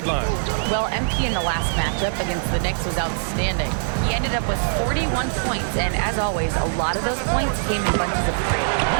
Well, MP in the last matchup against the Knicks was outstanding. He ended up with 41 points, and as always, a lot of those points came in bunches of 3.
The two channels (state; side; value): silent; left; digital silence